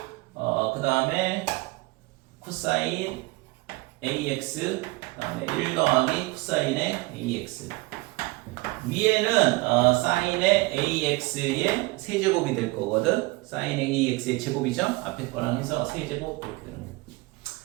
그 다음에 코사인 ax 그 다음에 1 더하기 코사인의 ax 위에는 사인의 ax의 세제곱이 될 거거든. 사인의 ax의 제곱이죠. 앞에 거랑 해서 세제곱 이렇게 되는 거예요.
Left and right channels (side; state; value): left; quieter; 22.8 dB